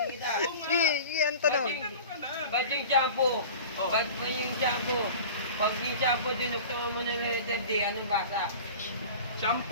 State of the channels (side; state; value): both; inverted; correlation -0.38